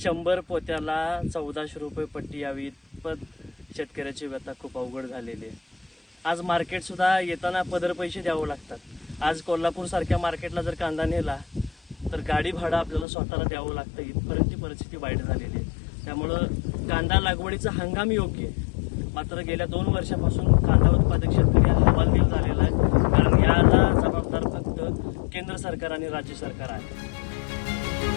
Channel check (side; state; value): right; drops out; at 13.1 s